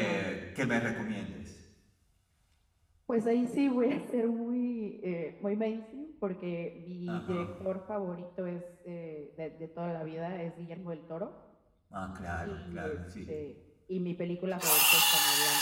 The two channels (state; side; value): identical; both; correlation 1.00